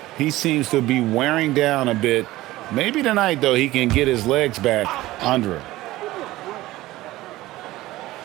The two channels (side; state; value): left; quieter; 17.3 dB